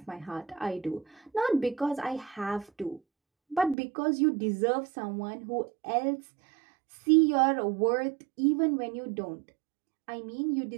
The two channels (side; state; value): left; drops out; at 3.8 s